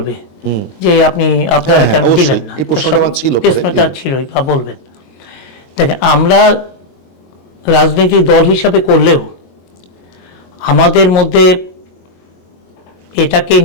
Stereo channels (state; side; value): late; right; 22 ms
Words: যে আপনারা কেন দিলেন না, প্রশ্নটা ছিলই বা বলবেন। দেখেন, আমরা রাজনৈতিক দল হিসাবে করলেও আমাদের মধ্যে এটাকে